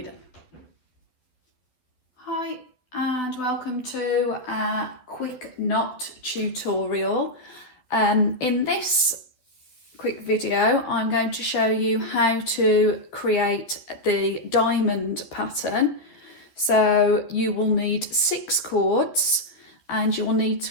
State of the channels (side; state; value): right; late; 11 ms